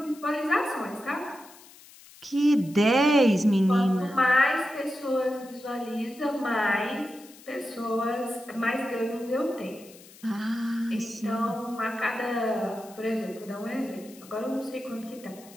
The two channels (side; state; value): left; noise; hiss, 22 dB below the sound